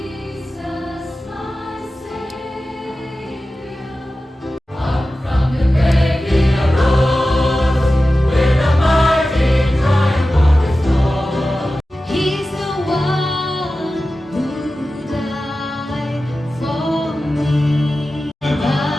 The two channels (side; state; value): both; normal; correlation 0.94